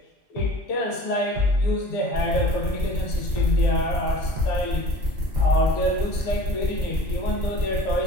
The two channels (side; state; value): both; normal; correlation 0.43